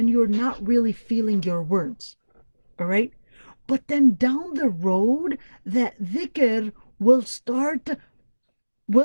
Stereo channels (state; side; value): inverted; both; correlation -1.00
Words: you're not really feeling your words. All right? But then down the road, that dhikr will start